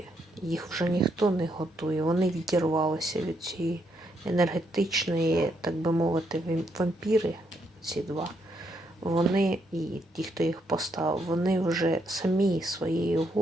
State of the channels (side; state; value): both; normal; correlation 0.76